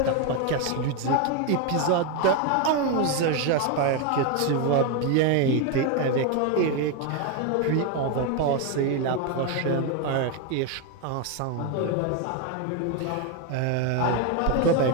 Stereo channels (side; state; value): both; different; correlation 0.01